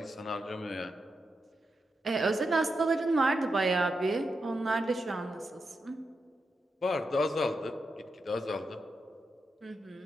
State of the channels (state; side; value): normal; both; correlation 0.86